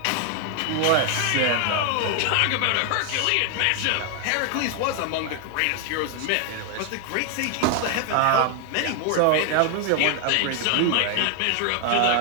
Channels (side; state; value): both; different; correlation 0.00